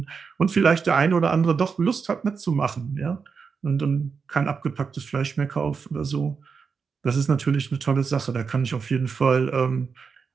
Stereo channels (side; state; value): left; quieter; 5.6 dB